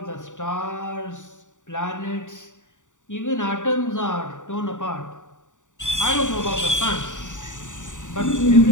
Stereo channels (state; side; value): late; right; 0.86 ms